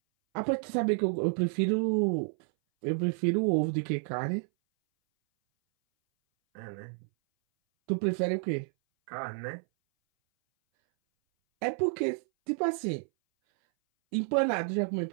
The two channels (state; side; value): silent; left; 58 dB below the other